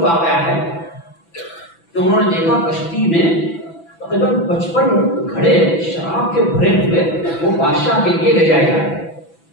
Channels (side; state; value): right; late; 6.0 ms